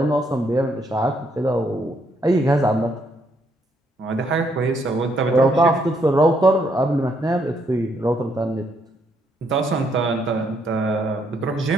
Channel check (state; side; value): normal; both; correlation 0.73